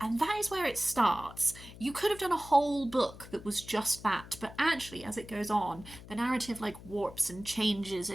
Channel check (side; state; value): left; noise; hum, 17 dB below the sound